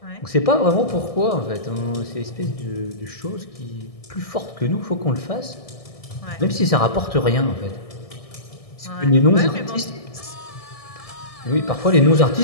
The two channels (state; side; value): late; right; 1.6 ms